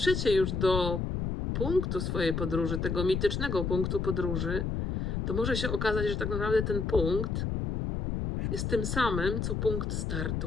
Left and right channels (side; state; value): left; noise; rumble, 1 dB below the sound